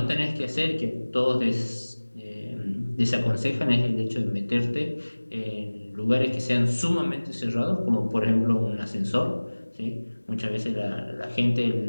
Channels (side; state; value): both; inverted; correlation -1.00